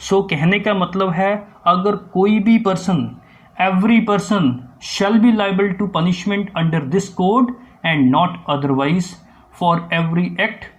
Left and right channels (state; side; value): identical; both; correlation 1.00